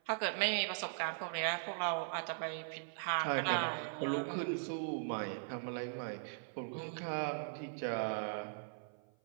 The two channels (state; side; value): silent; left; 51 dB below the other